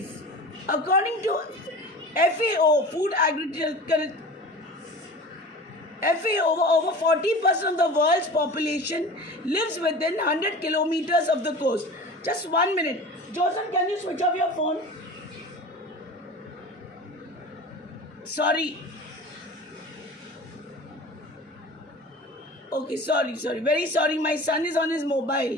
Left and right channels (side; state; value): both; normal; correlation 0.37